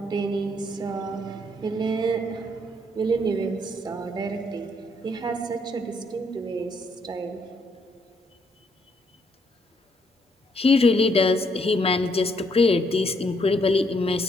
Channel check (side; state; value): both; normal; correlation 0.72